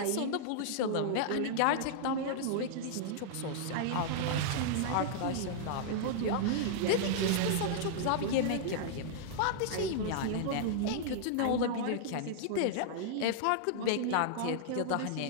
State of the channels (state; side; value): different; both; correlation -0.01